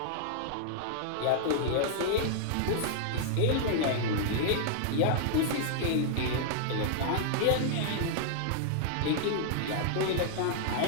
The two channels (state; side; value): different; both; correlation -0.01